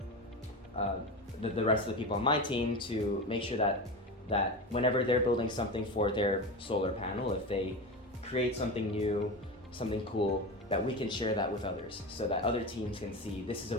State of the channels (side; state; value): both; normal; correlation 0.24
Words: the rest of the people on my team, to make sure that whenever they're building something for their solar panel, if they create something new, something cool, that we can share that with others, so that other teams can see this is a